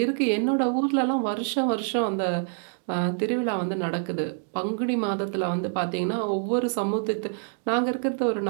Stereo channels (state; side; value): silent; left; 61 dB below the other